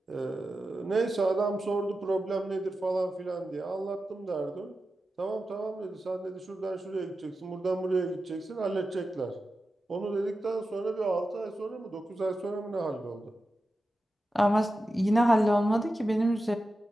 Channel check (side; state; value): both; normal; correlation 0.92